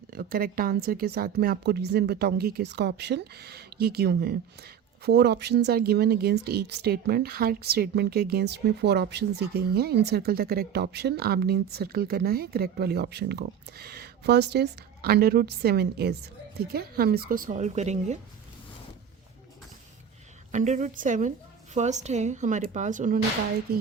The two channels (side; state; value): left; quieter; 8.1 dB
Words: करेक्ट आंसर के साथ मैं आपको रीज़न बताऊंगी कि इसका ऑप्शन ये क्यों है। 4 options are given against each statement. हर स्टेटमेंट के अगेंस्ट में 4 ऑप्शंस दी गई हैं। In circle the correct option, आपने सर्कल करना है करेक्ट वाली ऑप्शन को। फर्स्ट इज √7 इज, ठीक है, हम इसको सॉल्व करेंगे। √7 फर्स्ट है हमारे पास, उन्होंने कहा है कि